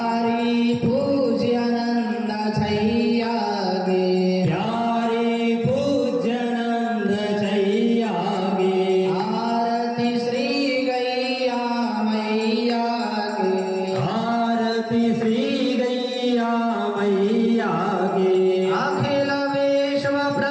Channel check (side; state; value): both; identical; correlation 1.00